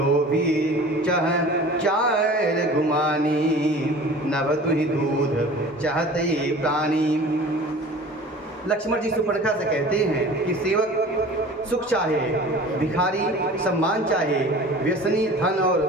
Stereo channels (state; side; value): normal; both; correlation 0.42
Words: चह चार गुमानी, नभ तुहि दूध चाहते प्राणी। लक्ष्मण जी शूर्पणखा से कहते हैं कि सेवक सुख चाहे, भिखारी सम्मान चाहे, व्यसनी धन और